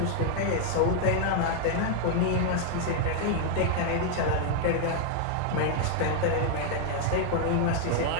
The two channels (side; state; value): both; different; correlation 0.00